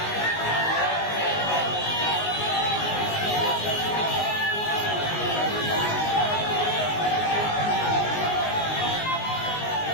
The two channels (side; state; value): right; late; 19 ms